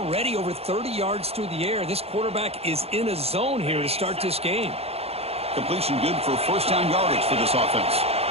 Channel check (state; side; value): late; left; 0.29 ms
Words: over 30 yards through the air. This quarterback is in a zone here to start this game. Completion good for first down yardage for this offense.